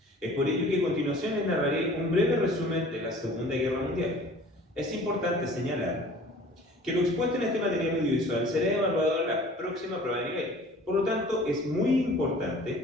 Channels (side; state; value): both; normal; correlation 0.48